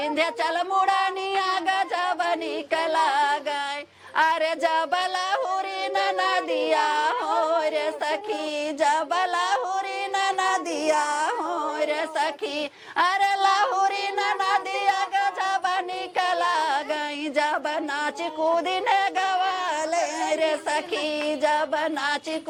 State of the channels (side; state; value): both; identical; correlation 1.00